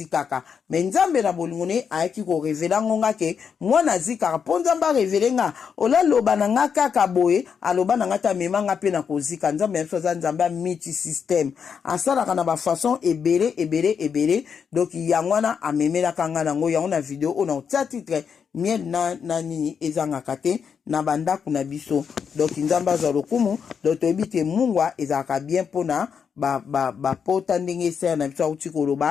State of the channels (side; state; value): right; quieter; 6.8 dB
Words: mais nzambe na bolingone ayaki ko révéler ngonga ke mwana zikaka po nzamba révéler nga ola loba na nga kaka boye aloba na nga ta memanga pe na kozika nzambe ya soza nzamba multi system asala kana ba façon ebele donc yango na amemela kanga nango yango na video ona otia titre miel na nini ezanga kate na banda kuna biso donc nzamba za lokumu donc toyebite mungwa ezaka bien pona ba pota ndenge ser na biso uti